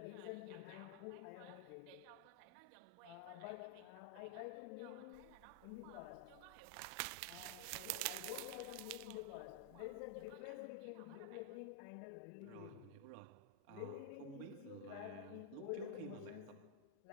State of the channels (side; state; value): both; different; correlation -0.01